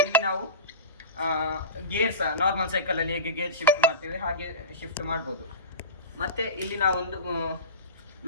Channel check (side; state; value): both; inverted; correlation -0.30